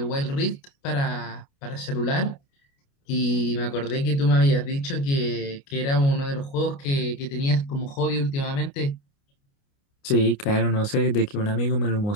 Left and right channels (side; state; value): right; late; 29 ms